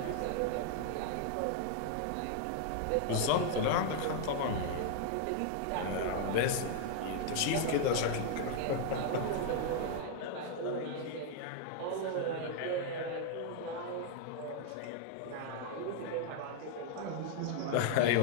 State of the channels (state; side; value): different; both; correlation 0.00